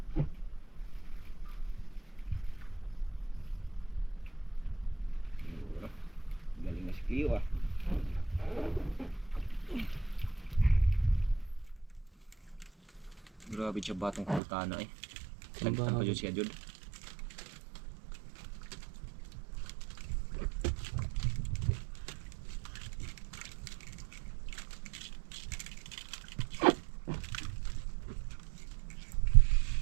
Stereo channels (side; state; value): left; drops out; at 14.4 s